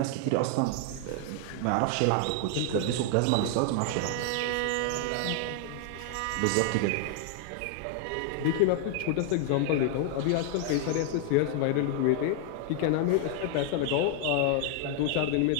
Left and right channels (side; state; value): both; different; correlation 0.00